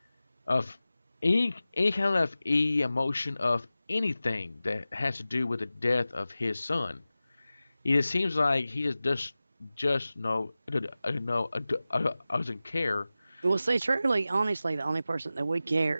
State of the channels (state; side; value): inverted; both; correlation -0.96